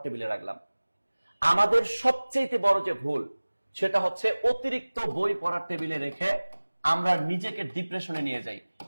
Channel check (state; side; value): inverted; both; correlation -1.00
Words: টেবিলে রাখলাম? আমাদের সবচেয়ে বড় যে ভুল সেটা হচ্ছে অতিরিক্ত বই পড়ার টেবিলে রেখে আমরা নিজেকে ডিপ্রেশনে নিয়ে যাই